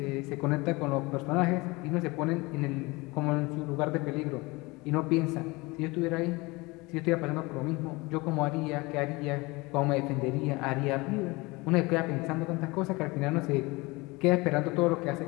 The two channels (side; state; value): right; quieter; 23.9 dB